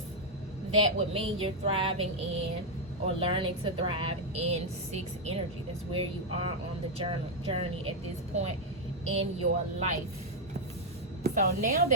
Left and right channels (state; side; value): normal; both; correlation -0.01